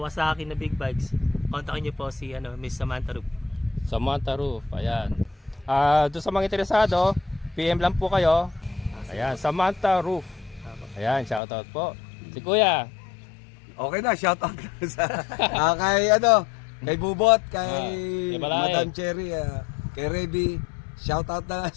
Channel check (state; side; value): drops out; right; at 11.4 s